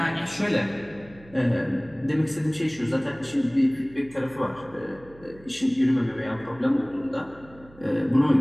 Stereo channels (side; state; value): right; noise; hum, 23 dB below the sound